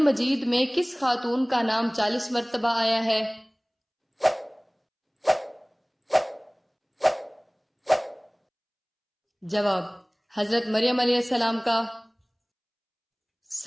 مجید میں کس خاتون کا نام 40 مرتبہ آیا ہے؟ جواب: حضرت مریم علیہ السلام کا۔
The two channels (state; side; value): identical; both; correlation 1.00